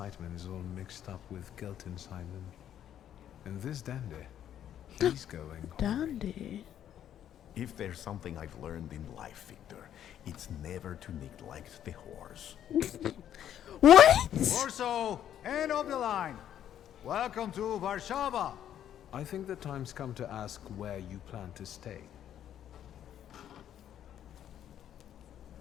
is all mixed up with guilt inside them. And this dandy, he's going Dandy. If there's something I've learned in life, Victor, it's never to neglect the horse. What? Warsaw, end of the line. Welcome to Warsaw. I think the time's come to ask where you plan to stay.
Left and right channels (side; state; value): right; quieter; 10.4 dB